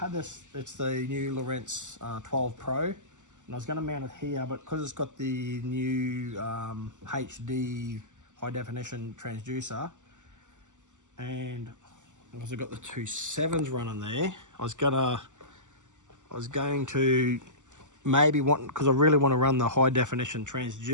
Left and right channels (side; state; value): left; late; 0.86 ms